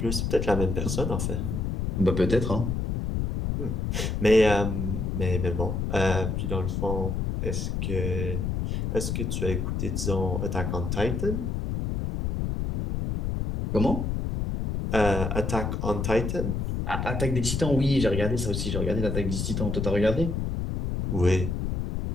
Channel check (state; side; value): noise; left; rumble, 1 dB below the sound